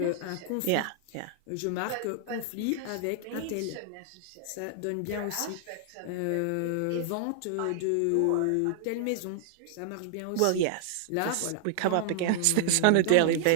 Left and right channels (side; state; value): both; different; correlation -0.01